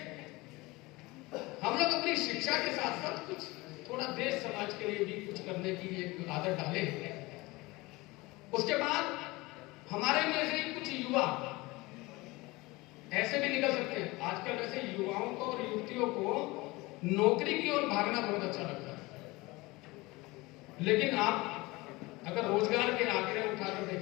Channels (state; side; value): quieter; right; 22.2 dB